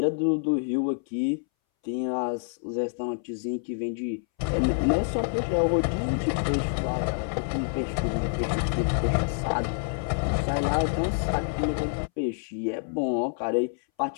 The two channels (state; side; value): silent; right; 60 dB below the other